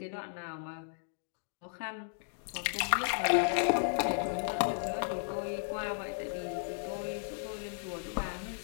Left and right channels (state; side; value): silent; right; digital silence